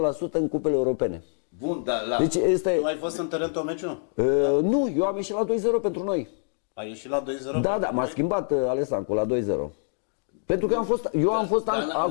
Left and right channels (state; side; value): silent; right; digital silence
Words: 100% în cupele europene? Bun, dar la... Deci este... Tu ai fost în teren tot meciul? Nu, eu am ieșit la 2-0 pentru noi. Ai ieșit la 2-0? Da, m-a schimbat Alessancu la 2-0. Pentru că eu am fost